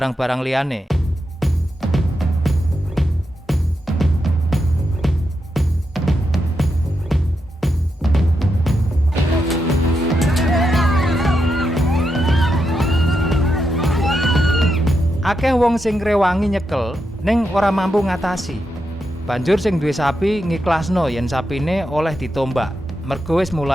liyane. Akeh wong sing ngrewangi nyekel ning ora mampu ngatasi. Banjur sing duwe sapi ngiklasno yen sapine oleh ditombak, mergo wis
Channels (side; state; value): both; normal; correlation 0.85